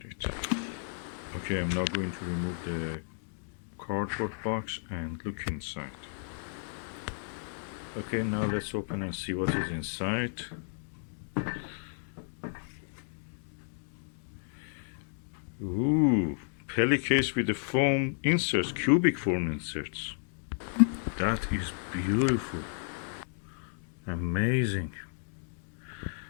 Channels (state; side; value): silent; right; digital silence